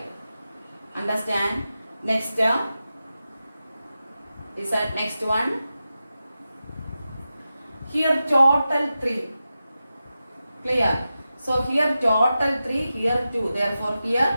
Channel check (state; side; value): inverted; both; correlation -0.92